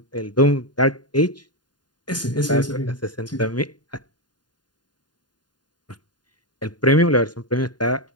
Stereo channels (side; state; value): right; late; 0.70 ms